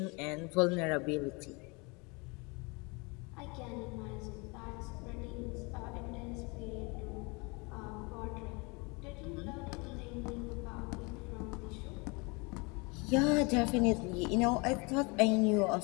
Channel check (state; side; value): quieter; right; 28.9 dB